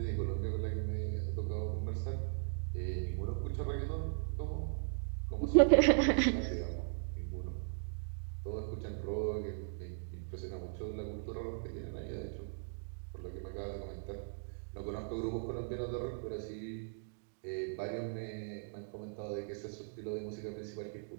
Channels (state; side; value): silent; left; digital silence